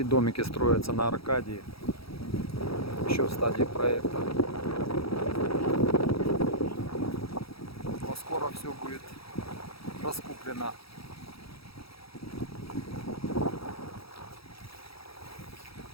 домики строятся на Аркадии. Еще в стадии проекта. Но скоро все будет раскуплено.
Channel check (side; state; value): right; late; 0.76 ms